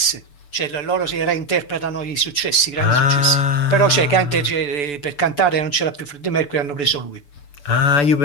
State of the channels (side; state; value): right; late; 6.9 ms